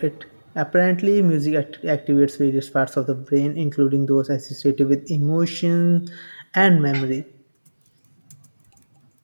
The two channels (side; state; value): both; inverted; correlation -1.00